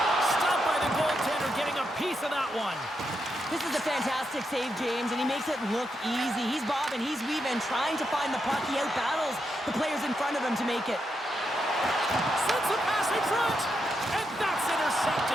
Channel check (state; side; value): normal; both; correlation 0.83